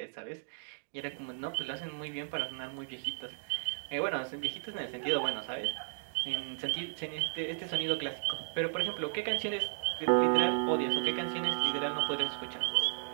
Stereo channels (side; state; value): left; silent; digital silence